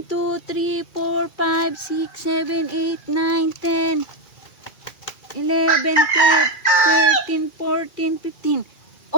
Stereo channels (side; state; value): right; late; 2.4 ms